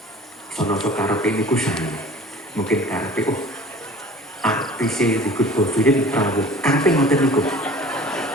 Sono karepe niku saya. Mungkin karepe artis dikut khofilin rawuh. Karepe ngoten niku.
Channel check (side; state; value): both; normal; correlation 0.44